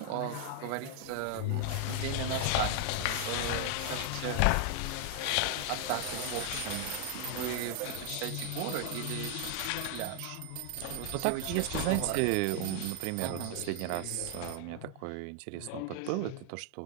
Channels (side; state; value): both; different; correlation 0.00